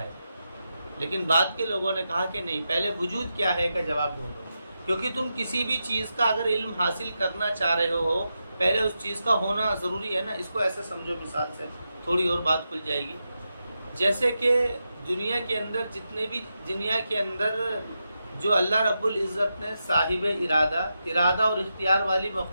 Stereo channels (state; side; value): inverted; both; correlation -0.88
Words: ہے، لیکن بعد کے لوگوں نے کہا کہ نہیں پہلے وجود کیا ہے کا جواب ڈھونڈو۔ کیونکہ تم کسی بھی چیز کا اگر علم حاصل کرنا چاہ رہے ہو پہلے اس چیز کا ہونا ضروری ہے نا۔ اس کو ایسے سمجھو، مثال سے تھوڑی اور بات کھل جائے گی۔ جیسے کہ دنیا کے اندر جو اللہ رب العزت نے صاحب ارادہ اور اختیار والی